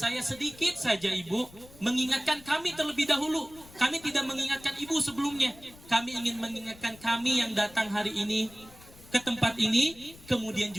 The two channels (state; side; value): noise; left; rumble, 22 dB below the sound